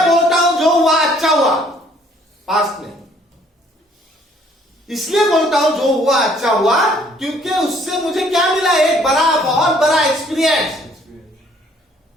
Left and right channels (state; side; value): normal; both; correlation 0.61